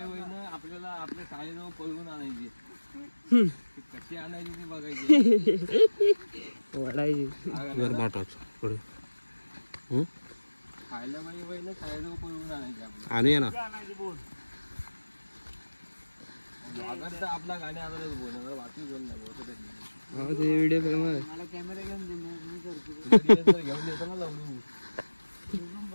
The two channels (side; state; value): both; inverted; correlation -1.00